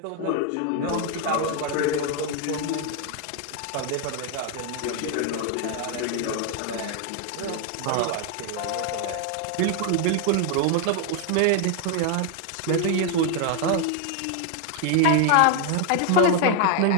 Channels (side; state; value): both; different; correlation 0.01